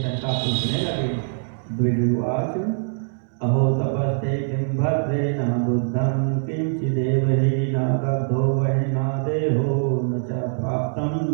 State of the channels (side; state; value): left; silent; 62 dB below the other